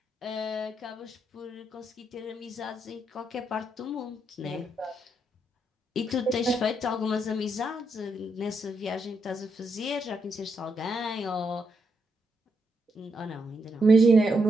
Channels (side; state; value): both; normal; correlation 0.80